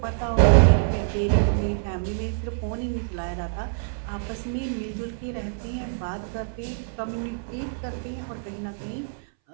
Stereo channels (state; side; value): silent; left; 61 dB below the other